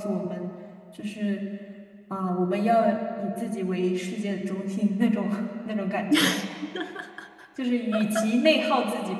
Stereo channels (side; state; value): both; identical; correlation 1.00